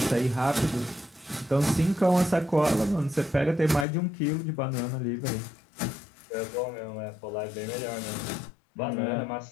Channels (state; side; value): drops out; right; at 3.9 s